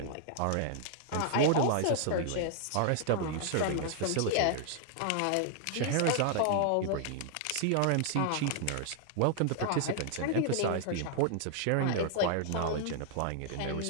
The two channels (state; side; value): different; both; correlation 0.00